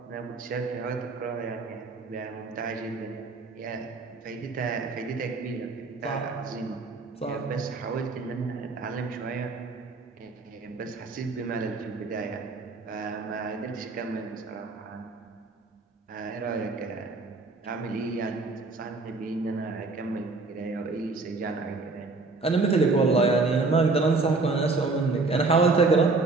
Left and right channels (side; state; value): left; quieter; 3.7 dB